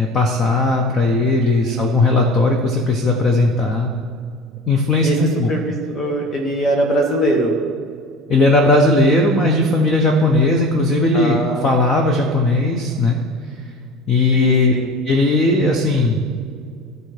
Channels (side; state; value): both; normal; correlation 0.36